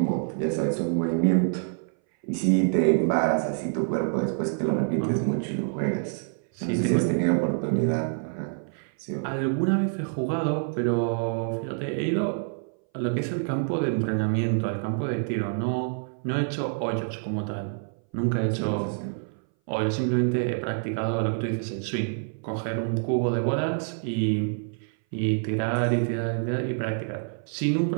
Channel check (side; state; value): left; silent; 59 dB below the other